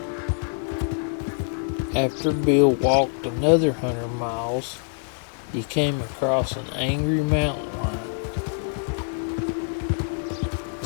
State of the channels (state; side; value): silent; right; 61 dB below the other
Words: After Bill walked another 100 miles, he came across an angry mountain lion.